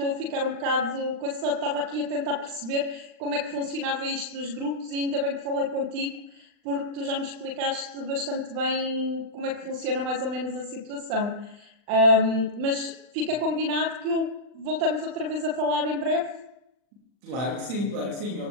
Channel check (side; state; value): left; late; 39 ms